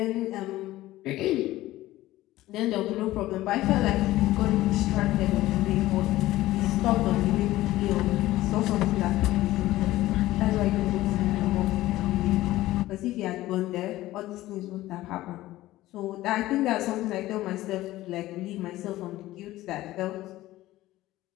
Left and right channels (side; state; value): right; quieter; 16.3 dB